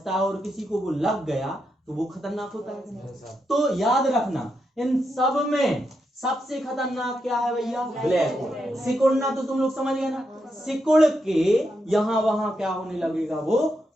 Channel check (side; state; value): both; normal; correlation 0.83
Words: है और किसी को वो लग गया तो वो खतरनाक होता है। तो याद रखना, इन सब में सबसे खतरनाक क्या है भैया? Black hole. सिकुड़ना तो तुम लोग समझ गए ना, सिकुड़ के यहाँ वहां क्या होने लगेगा, वो